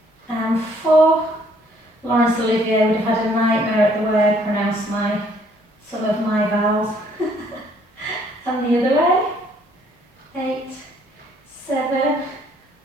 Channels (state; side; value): normal; both; correlation 0.64